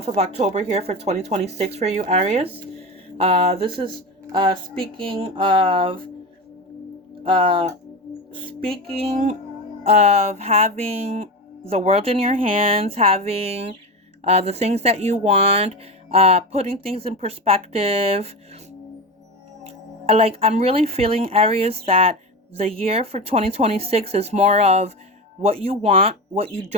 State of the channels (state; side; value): normal; both; correlation 0.22